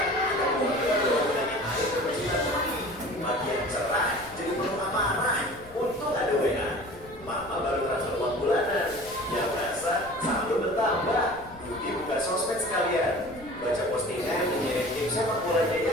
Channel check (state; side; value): noise; left; rumble, 20 dB below the sound